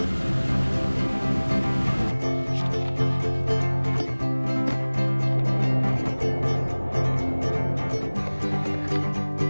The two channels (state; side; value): inverted; both; correlation -1.00